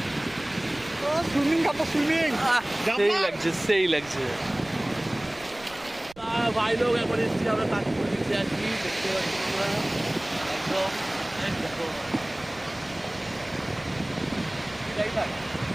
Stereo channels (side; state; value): right; noise; rumble, 25 dB below the sound